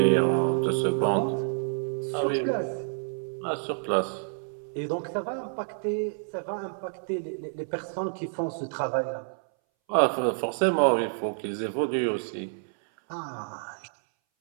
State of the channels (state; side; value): silent; left; 59 dB below the other